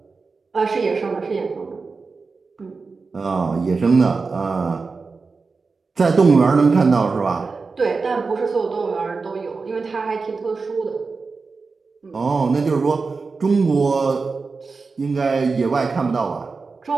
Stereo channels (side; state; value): left; quieter; 4.4 dB